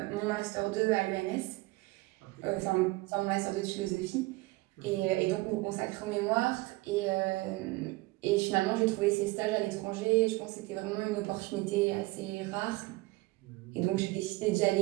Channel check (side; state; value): left; quieter; 21.9 dB